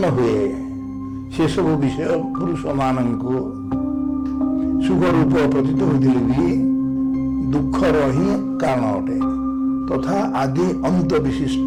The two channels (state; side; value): identical; both; correlation 1.00